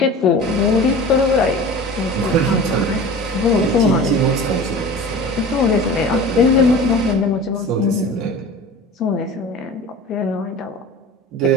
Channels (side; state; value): both; normal; correlation 0.37